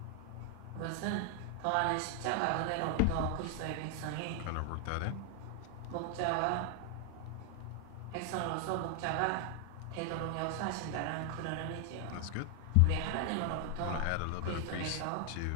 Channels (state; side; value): different; both; correlation 0.00